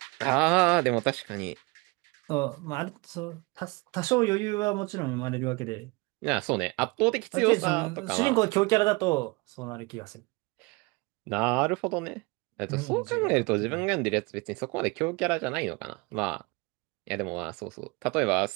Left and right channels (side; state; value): left; quieter; 26.5 dB